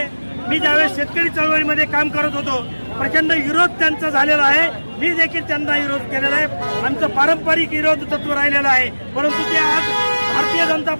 मी ज्यावेळेस शेतकरी चळवळीमध्ये काम करत होतो, प्रचंड विरोध त्यांचा झालेला आहे. मी देखील त्यांना विरोध केलेला आहे. आमचं पारंपरिक विरोध तत्व राहिलेलं आहे. परंतु ते आज भारतीय जनता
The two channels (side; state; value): both; inverted; correlation -1.00